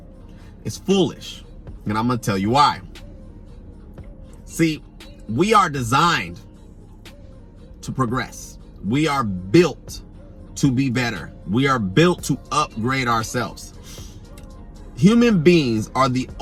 it's foolish. And I'm going to tell you why. See, we are designed to progress. We are built to be better. We are built to upgrade ourselves. Human beings are the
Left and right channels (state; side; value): identical; both; correlation 1.00